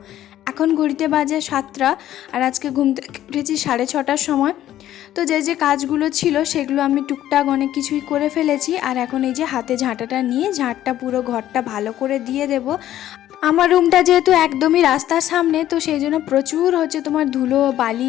এখন ঘড়িতে বাজে 7টা, আর আজকে ঘুম থেকে উঠেছি 6:30টার সময়। তো যে কাজগুলো ছিল সেগুলো আমি টুকটাক অনেক কিছুই করে ফেলেছি। আর এখন এই যে হাতে ঝাঁটাটা নিয়ে ঝাঁটটা পুরো ঘরটা ভালো করে দিয়ে দেব। আমার রুমটা যেহেতু একদমই রাস্তার সামনে, তো সেই জন্য প্রচুর তোমার ধুলো বালি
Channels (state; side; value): quieter; right; 12.7 dB